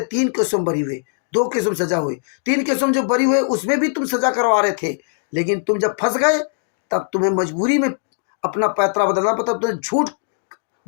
3 केसों में बरी हुए, 2 केसों में सजा हुई। 3 केसों में जो बरी हुए उसमें भी तुम सजा करवा रहे थे, लेकिन तुम जब फंस गए तब तुम्हें मजबूरी में अपना पैतरा बदलना पड़ा। तुम्हें झूठ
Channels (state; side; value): silent; right; digital silence